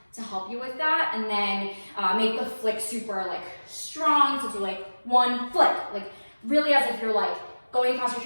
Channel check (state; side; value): inverted; both; correlation -1.00